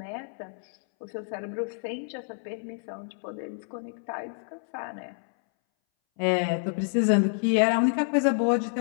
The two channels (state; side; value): silent; right; 59 dB below the other